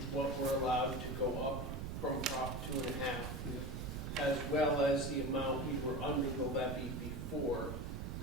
what we're allowed to go up from Prop 2.5, as well as the amount we were under the levy before,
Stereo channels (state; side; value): noise; right; rumble, 5 dB below the sound